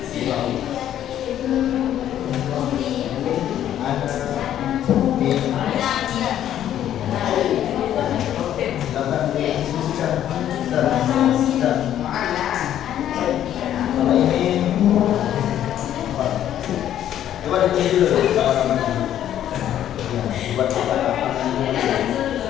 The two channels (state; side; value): quieter; right; 11.1 dB